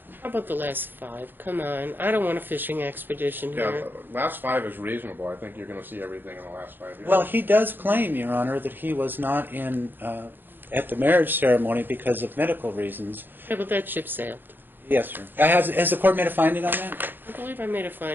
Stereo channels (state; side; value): late; left; 0.095 ms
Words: How about the last 5? Come on. I don't want a fishing expedition Yeah, here. last 5 is reasonable. I think you're going to see everything in the last 5 years. Well, he does claim, Your Honor, that he was not in at the marriage ceremony because of medical reasons. Yeah, but that ship sailed. Yes, sir. Has the court made a finding on that? I believe I made a